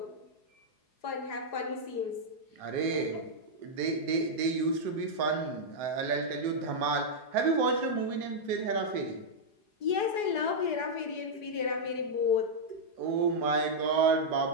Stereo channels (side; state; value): right; late; 4.8 ms